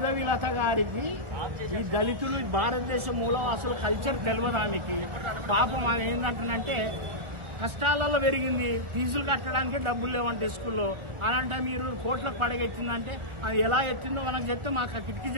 గారికి ఈ దళితులు భారతదేశ మూలవాసుల కల్చర్ తెలియదు ఆమెకి. పాపం ఆమె ఏంటంటే కష్టాలలో పెరిగింది, ఫీజులు కట్టడానికి డబ్బులు లేవంటే స్కూల్లో. అలాంటి మీరు కోట్లకు పడగెత్తిందంటే అది ఎలా ఎత్తిందో మనకు చెప్తే, మాకు కిటికీ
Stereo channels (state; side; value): late; left; 1.6 ms